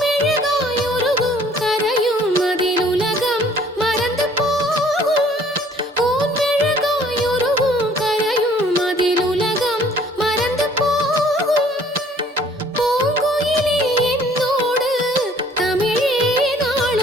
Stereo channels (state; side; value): normal; both; correlation 0.57